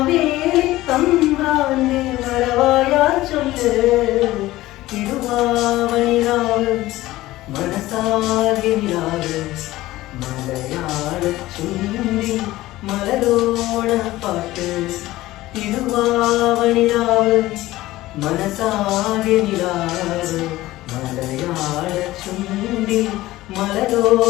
തമ്പ്രാന്റെ വരവായാ ചൊല്ല്. തിരുവാവണിരാവ് മനസാകെ നിലാവ് മലയാള ചുണ്ടിൽ മലരോണപ്പാട്ട്. തിരുവാവണിരാവ് മനസാകെ നിലാവ് മലയാള ചുണ്ടിൽ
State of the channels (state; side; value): quieter; right; 17.0 dB